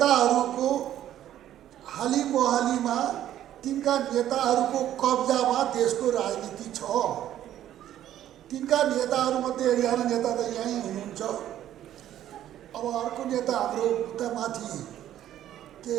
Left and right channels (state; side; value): quieter; left; 11.9 dB